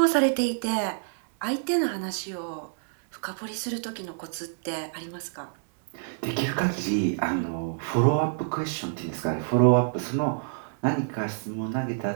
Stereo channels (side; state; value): left; silent; 60 dB below the other